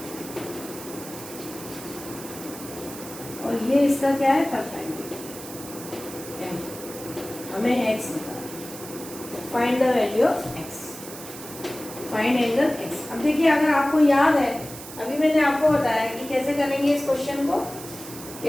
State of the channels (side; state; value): right; noise; hiss, 13 dB below the sound